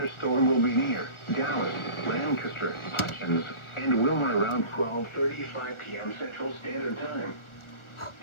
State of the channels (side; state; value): right; late; 1.4 ms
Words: will be near Dallas, Lancaster, Hutchins, and Wilmer around 12:35 p.m. Central Standard Time.